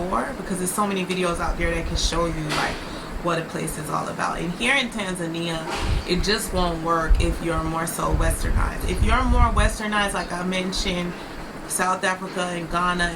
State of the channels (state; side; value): identical; both; correlation 1.00